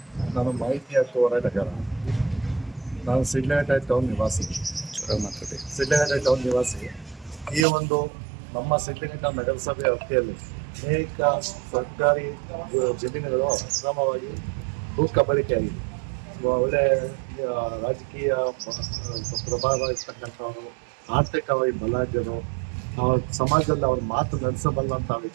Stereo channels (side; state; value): left; drops out; at 7.7 s